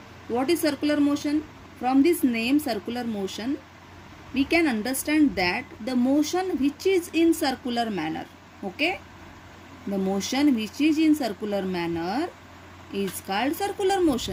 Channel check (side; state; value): both; identical; correlation 1.00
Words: What is circular motion? From this name circular motion, we can understand that the motion which is in circular manner. Okay, the motion which is in circular manner is called circular